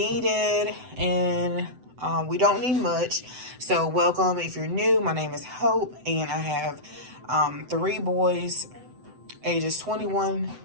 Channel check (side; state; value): left; late; 7.9 ms